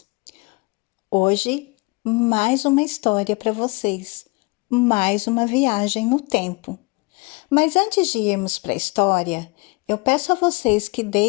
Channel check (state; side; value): quieter; right; 27.5 dB